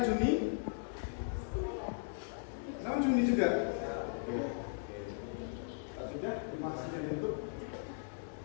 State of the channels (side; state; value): right; silent; digital silence